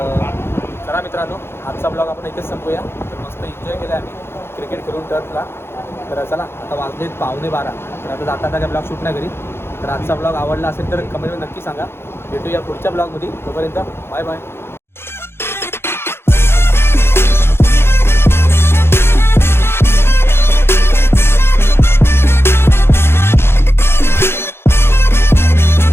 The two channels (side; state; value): right; late; 0.12 ms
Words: चला मित्रांनो आजचा ब्लॉग आपण इथेच संपूया. तर मस्त एन्जॉय केला आम्ही क्रिकेट खेळून टर्फला. तर चला आता वाजलेत 11:15. तर आता जाता काय ब्लॉग शूट नाही करी. तर आजचा ब्लॉग आवडला असेल तर कमेंटमध्ये नक्की सांगा. भेटूया पुढच्या ब्लॉगमध्ये. तोपर्यंत बाय बाय.